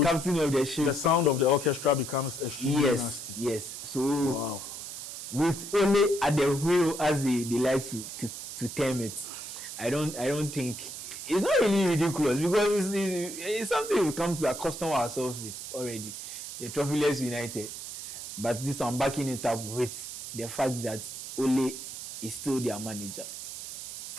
captain of the ship. The sound of the orchestra becomes extremely nasty. Yes. So wow. With only at the wheel, as they like to term it, I don't think it's not really ridiculous, because it's something we come to accustom ourselves with already. The trophyless United, but this one backing it up with the fact that Ole is still their manager.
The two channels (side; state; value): right; noise; hiss, 9 dB below the sound